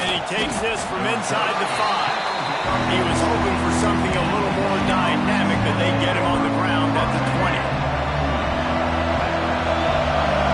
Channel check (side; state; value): both; identical; correlation 1.00